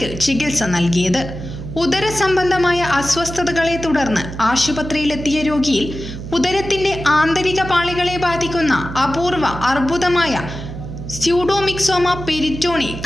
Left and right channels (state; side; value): noise; right; hum, 10 dB below the sound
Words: ചികിത്സ നൽകിയത്. ഉദര സംബന്ധമായ അസ്വസ്ഥതകളെ തുടർന്ന് ആശുപത്രിയിലെത്തിയ രോഗിയിൽ ഉദരത്തിന്റെ ആന്തരിക പാളികളെ ബാധിക്കുന്ന അപൂർവ അർബുദമായ സ്യൂഡോമിക്സോമ പെരിറ്റോണി